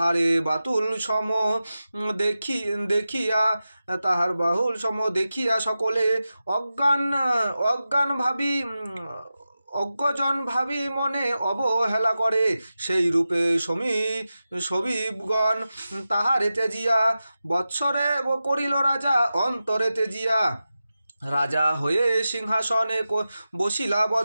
বাতুল সম দেখিয়া তাহার বাহুল সম দেখিয়া সকলে অজ্ঞজন ভাবি মনে অবহেলা করে। সেই রূপে সমীপগণ তাহারে তেজিয়া বৎসরে করিল রাজা অন্তরে তেজিয়া। রাজা হয়ে সিংহাসনে বসিলা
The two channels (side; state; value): both; inverted; correlation -0.93